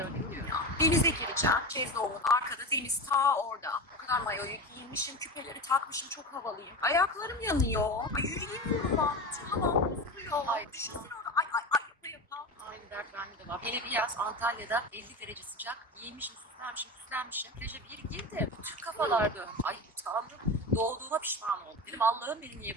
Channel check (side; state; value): both; normal; correlation 0.25